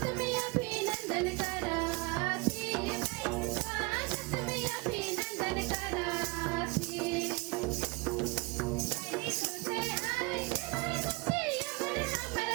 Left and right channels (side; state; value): left; quieter; 26.8 dB